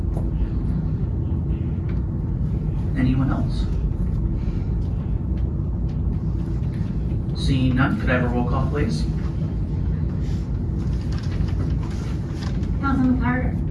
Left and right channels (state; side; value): identical; both; correlation 1.00